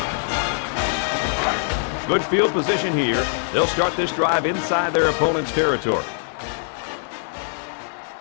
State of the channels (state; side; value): silent; right; 64 dB below the other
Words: Good field position here. They'll start this drive inside their opponent's territory.